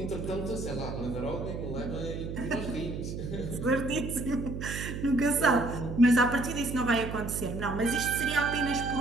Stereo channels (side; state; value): right; noise; hum, 6 dB below the sound